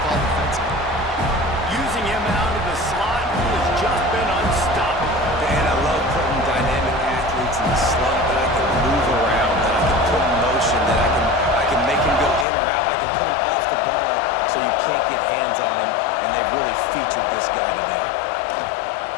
call defensively. Using him out of the slot, he has just been unstoppable. Man, I love putting dynamic athletes in the slot that I can move around, that I can put in motion, that I can make him go in or out. I can put him off the ball so you can't get hands on him, and they've really featured this guy today.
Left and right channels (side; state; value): right; drops out; at 12.5 s